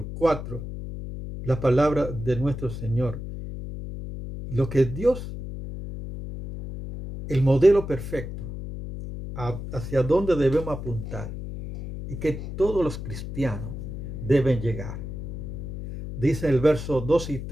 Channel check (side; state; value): left; noise; hum, 8 dB below the sound